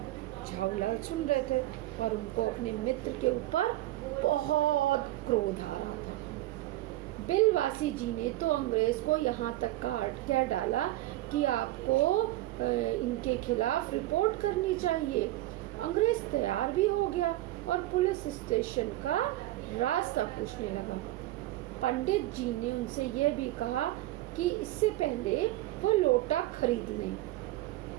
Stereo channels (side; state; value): left; quieter; 16.4 dB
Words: झाऊलाल सुन रहे थे और उनको अपने मित्र के ऊपर बहुत क्रोध आ रहा था। बिलवासी जी ने तो अंग्रेज को यहाँ तक कह डाला कि आपको इनके खिलाफ रिपोर्ट करनी चाहिए। अंग्रेज तैयार भी हो गया और पुलिस स्टेशन का रास्ता पूछने लगा। पंडित जी ने उनसे यह भी कहा कि इससे पहले वो लोटा खरीद लें,